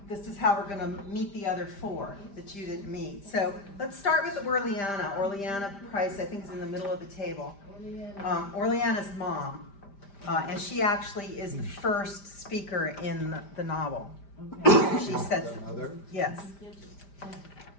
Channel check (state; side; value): late; right; 5.1 ms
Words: this is how we're going to meet the other four that you didn't meet. So let's start with Orleana. Orleana Price, I think, is in the middle of the table. Orleana's mom, and she actually is the first speaker in the novel. Okay. She says, yes.